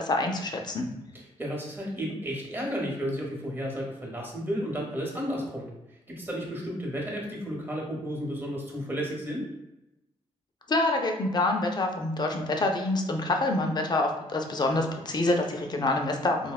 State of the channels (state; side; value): normal; both; correlation 0.58